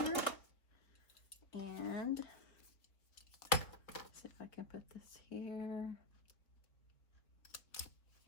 And see if I can put this here.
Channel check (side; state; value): right; late; 3.7 ms